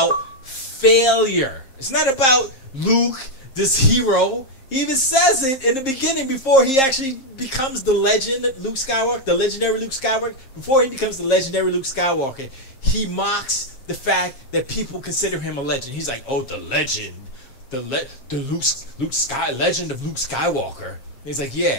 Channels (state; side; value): late; right; 7.6 ms